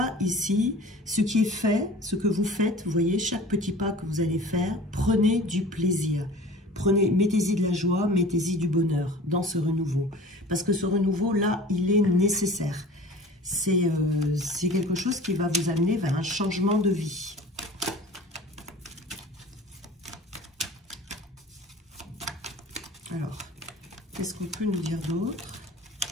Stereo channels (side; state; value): both; normal; correlation 0.42